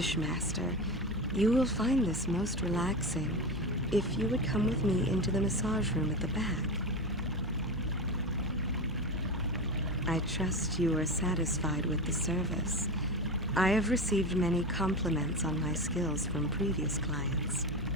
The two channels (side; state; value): both; normal; correlation 0.22